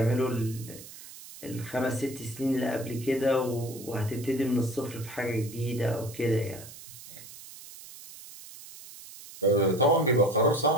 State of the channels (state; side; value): noise; right; hiss, 16 dB below the sound